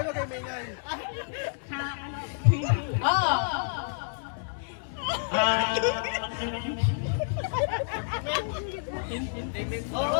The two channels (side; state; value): right; silent; digital silence